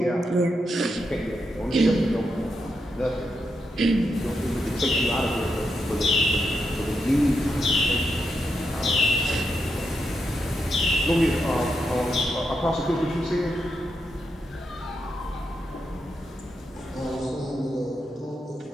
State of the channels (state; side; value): normal; both; correlation 0.83